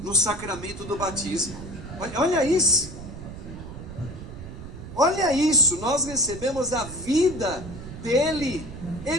no sacramento do batismo. Olha isso. Olha isso, nós recebemos a vida dele.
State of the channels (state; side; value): noise; right; rumble, 12 dB below the sound